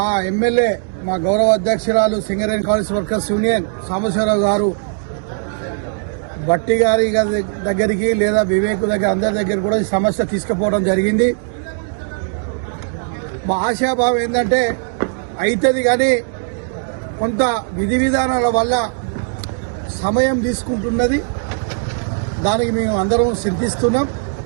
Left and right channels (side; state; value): left; silent; digital silence